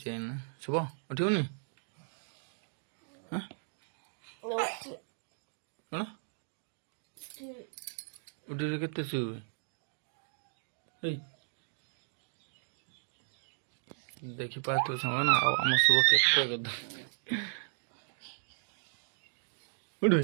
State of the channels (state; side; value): silent; left; digital silence